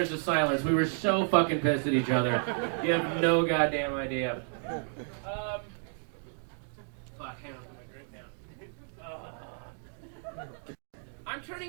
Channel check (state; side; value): silent; left; 57 dB below the other